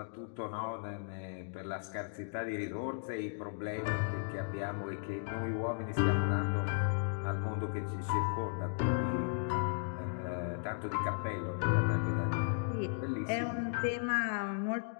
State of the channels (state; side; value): silent; right; digital silence